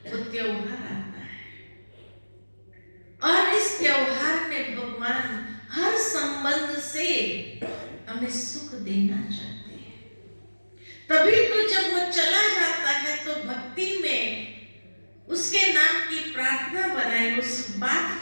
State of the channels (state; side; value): inverted; both; correlation -1.00